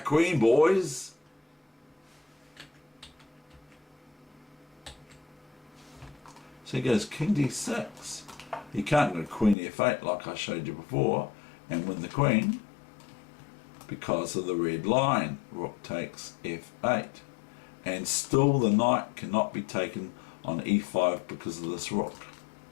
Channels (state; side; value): drops out; right; at 9.6 s